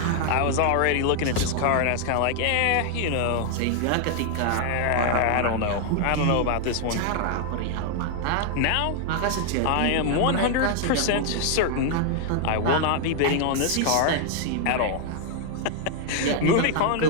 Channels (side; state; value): both; different; correlation 0.00